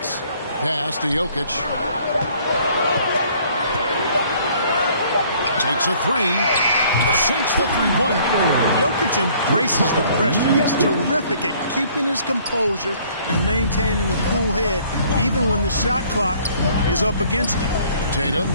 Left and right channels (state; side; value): inverted; both; correlation -0.59